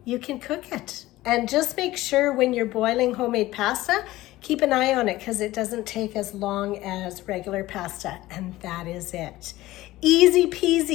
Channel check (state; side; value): quieter; right; 17.1 dB